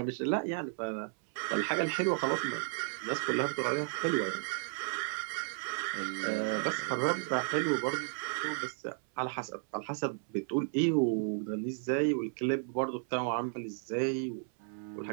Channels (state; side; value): silent; left; 55 dB below the other